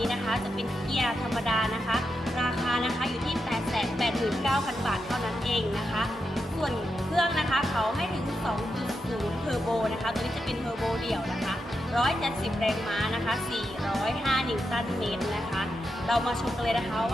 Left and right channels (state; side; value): normal; both; correlation 0.86